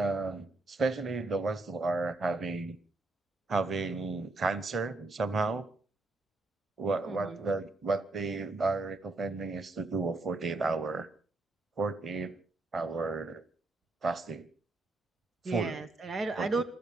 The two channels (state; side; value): quieter; left; 3.2 dB